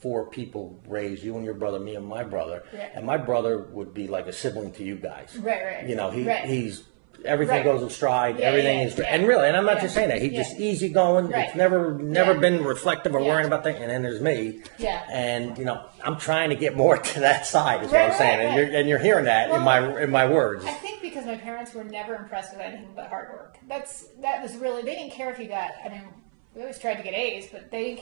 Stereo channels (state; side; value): silent; left; 60 dB below the other